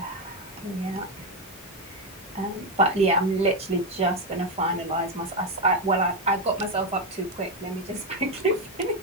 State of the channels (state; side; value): normal; both; correlation 0.07